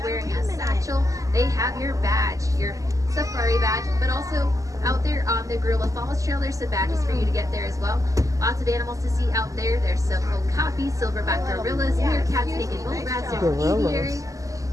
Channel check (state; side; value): late; left; 0.16 ms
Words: a satchel. They have your badge, your safari badge, but also out there on the Gorilla Falls Trail, there's some badges for you to get there as well. Lots of animals to see out there. There's some okapi, silverback gorillas, meerkats, naked bull rats, there's an aviary.